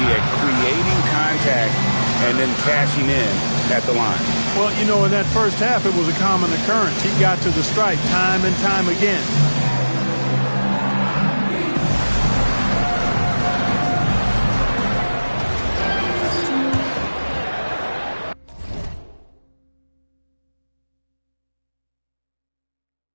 at creating contact and then cashing in at the line. Well, you know, in that first half, it was a common occurrence. He got to the stripe time and time again.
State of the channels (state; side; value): inverted; both; correlation -1.00